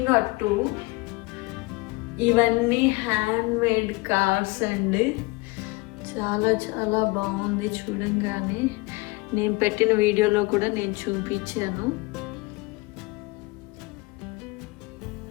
ఇవన్నీ హ్యాండ్ మేడ్ కార్స్ అండి. చాలా చాలా బాగుంది చూడంగానే. నేను పెట్టిన వీడియోలో కూడా నేను చూపించాను.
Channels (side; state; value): right; quieter; 23.7 dB